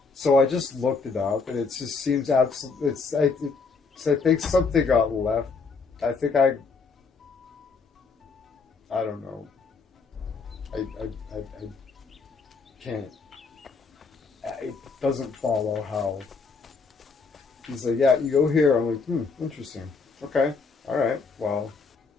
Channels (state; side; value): quieter; right; 4.6 dB